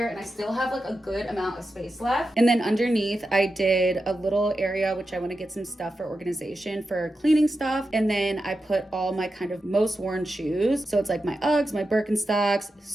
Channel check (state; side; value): normal; both; correlation 0.90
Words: and I still have like a good amount of space left. And then underneath, I did a little area, which I want to get some stuff for organization for cleaning stuff. And then I put all my kind of most worn shoes. So it's like my Uggs, my Birkenstocks.